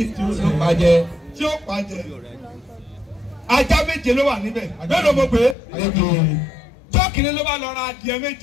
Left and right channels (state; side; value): drops out; right; at 5.6 s